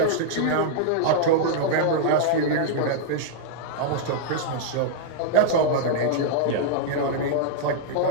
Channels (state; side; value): different; both; correlation -0.01